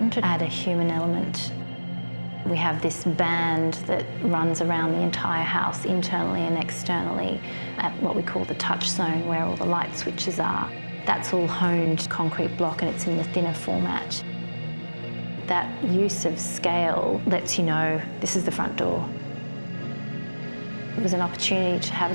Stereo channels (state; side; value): inverted; both; correlation -1.00